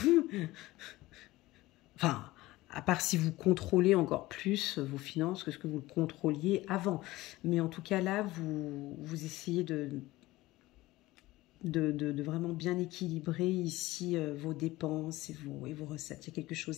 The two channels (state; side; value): quieter; right; 18.4 dB